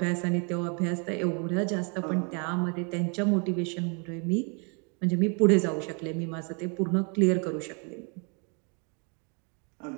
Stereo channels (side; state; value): left; quieter; 36.1 dB